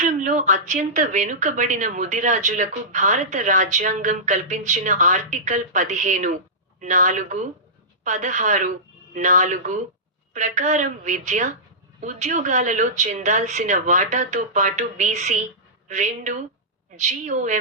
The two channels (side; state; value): both; normal; correlation -0.17